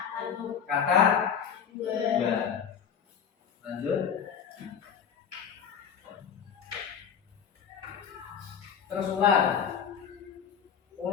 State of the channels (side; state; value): right; quieter; 7.7 dB